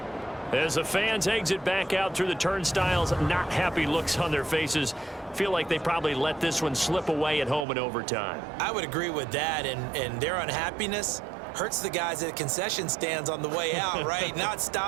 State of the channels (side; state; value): left; drops out; at 7.7 s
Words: As the fans exit back out through the turnstiles, not happy looks on their faces. Feel like they probably let this one slip away at home in overtime. I would agree with that, and their unhappiness hurts the guys at concession stands on the way out, right? Not